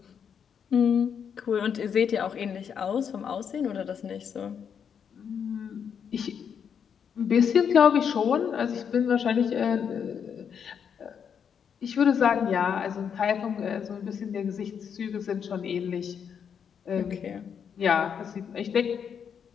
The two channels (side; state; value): right; quieter; 7.4 dB